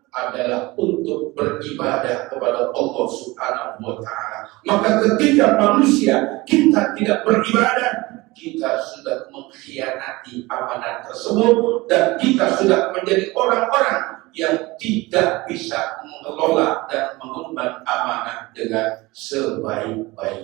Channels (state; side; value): quieter; left; 21.6 dB